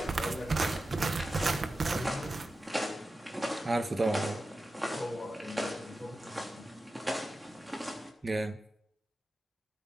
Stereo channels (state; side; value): normal; both; correlation 0.93